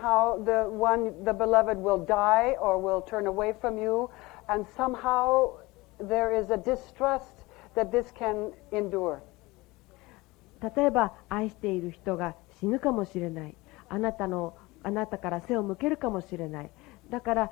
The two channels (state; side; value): quieter; right; 21.8 dB